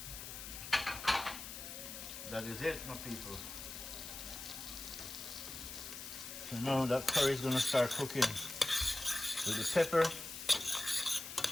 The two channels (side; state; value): left; noise; hiss, 9 dB below the sound